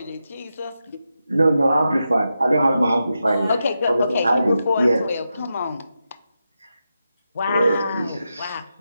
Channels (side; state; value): both; inverted; correlation -0.88